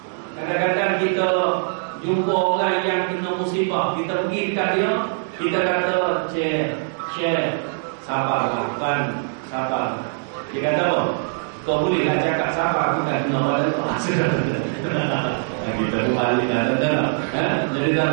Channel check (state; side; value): silent; left; digital silence